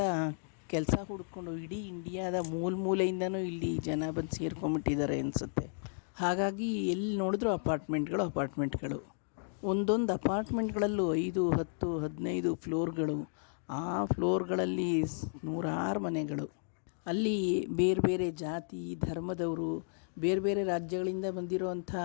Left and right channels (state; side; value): silent; right; digital silence